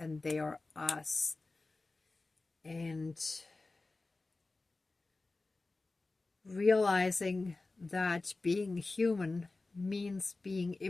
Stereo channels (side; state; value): right; quieter; 3.4 dB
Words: they are us. And realizing that being human means being